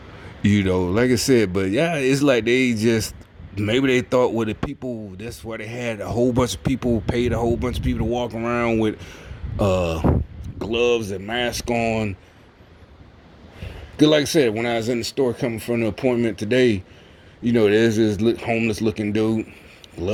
Like I said, but yeah, it's like they just maybe they thought with the people. That's why they had a whole bunch of people, paid a whole bunch of people to walk around with gloves and mask on. Cause like I said, when I was in the store coming from the appointment today, there's this homeless looking dude,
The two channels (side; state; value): both; identical; correlation 1.00